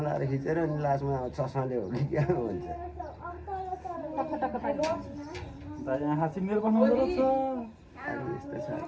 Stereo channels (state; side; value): identical; both; correlation 1.00